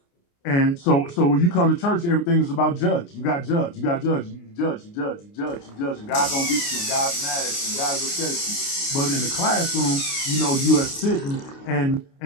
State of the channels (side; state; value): right; late; 29 ms